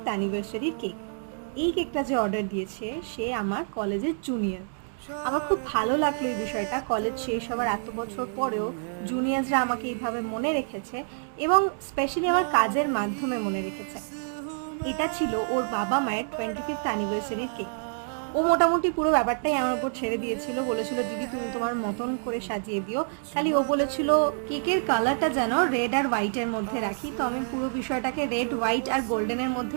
অ্যানিভার্সারির কেক। এই কেকটা যে অর্ডার দিয়েছে সে আমার কলেজের জুনিয়র। আমার খুব ভালো লাগলো এই বিষয়টা, কলেজ শেষ হওয়ার এত বছর পরেও জুনিয়র্সরা আমাকে এইভাবে মনে রেখেছে এবং স্পেশালি আমার কাজের মাধ্যমে মনে রেখেছে। এটা ছিল ওর বাবা মায়ের 25th অ্যানিভার্সারির কেক। ও মোটামুটি পুরো ব্যাপারটাই আমার উপর ছেড়ে দিয়েছিল, বলেছিল দিদি তুমি তোমার মতন করে সাজিয়ে দিও। খালি ও বলেছিল কেকের কালারটা যেন রেড আর হোয়াইটের মধ্যে রাখি, তো আমি পুরো বিষয়টাকে রেড, হোয়াইট আর গোল্ডেনের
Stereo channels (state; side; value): silent; left; digital silence